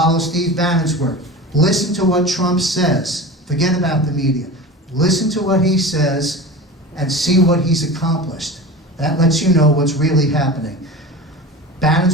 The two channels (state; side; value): normal; both; correlation 0.32